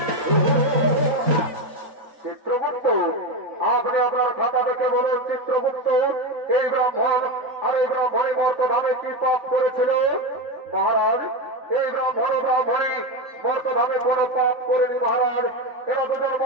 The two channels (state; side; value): late; left; 3.9 ms